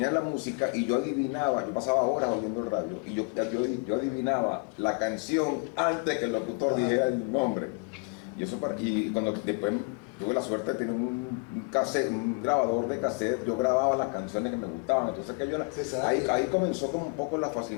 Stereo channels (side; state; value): right; quieter; 34.3 dB